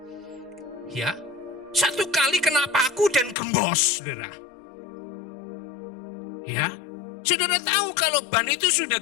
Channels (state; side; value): drops out; right; at 3.4 s